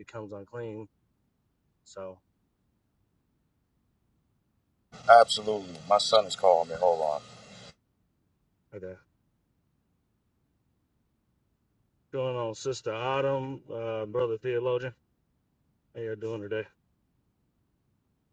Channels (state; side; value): identical; both; correlation 1.00